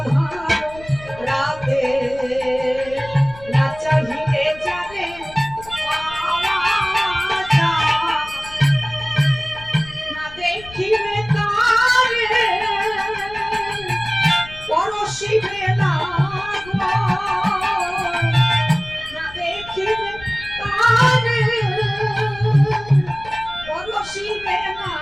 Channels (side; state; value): left; noise; rumble, 19 dB below the sound